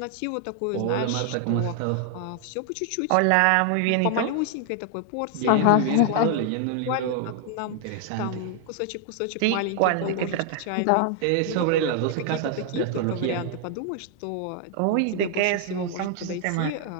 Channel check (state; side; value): different; both; correlation 0.00